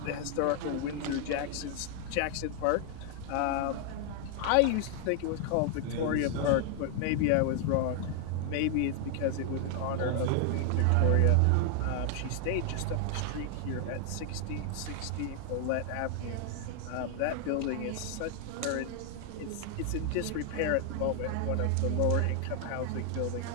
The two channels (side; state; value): both; different; correlation 0.00